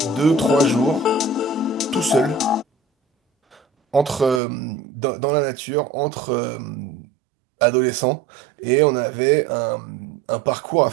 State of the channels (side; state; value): left; drops out; at 4.4 s